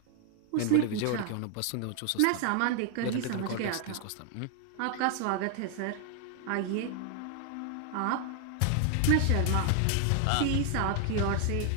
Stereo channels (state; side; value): different; both; correlation 0.00